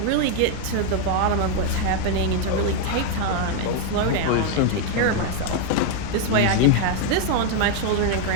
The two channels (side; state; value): both; different; correlation 0.01